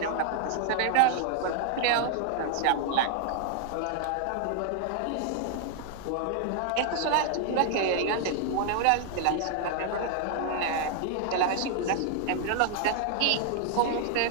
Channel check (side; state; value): both; different; correlation 0.00